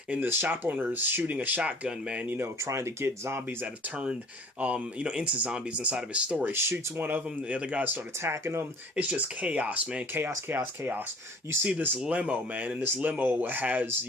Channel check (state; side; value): normal; both; correlation 0.50